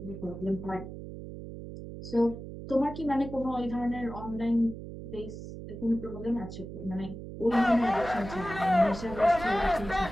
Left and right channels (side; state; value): right; noise; hum, 11 dB below the sound